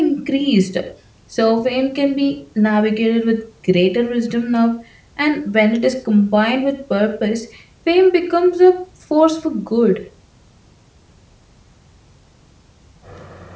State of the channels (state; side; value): identical; both; correlation 1.00